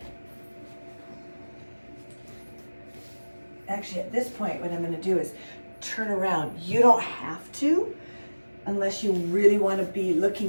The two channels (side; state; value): both; inverted; correlation -1.00